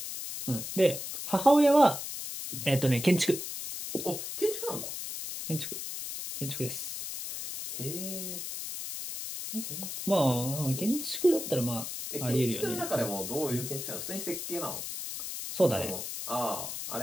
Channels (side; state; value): left; noise; hiss, 6 dB below the sound